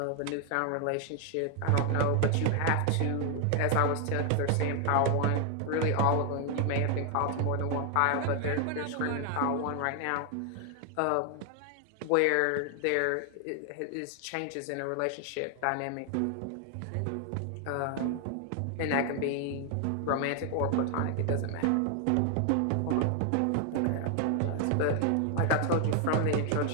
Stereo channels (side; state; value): both; different; correlation 0.00